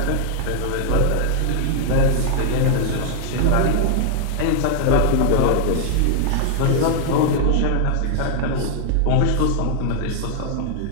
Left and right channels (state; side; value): different; both; correlation -0.01